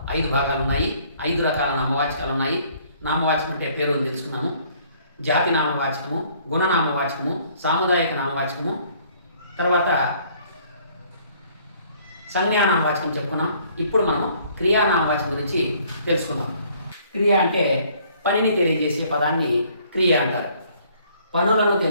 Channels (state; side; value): inverted; both; correlation -0.60